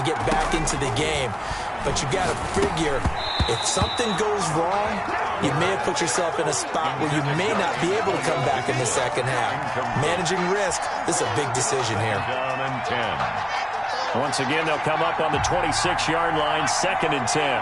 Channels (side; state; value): both; identical; correlation 1.00